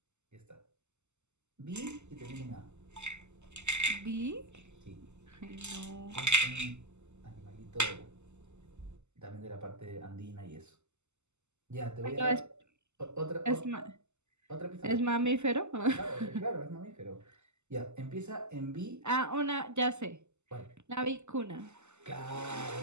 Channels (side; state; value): left; late; 0.83 ms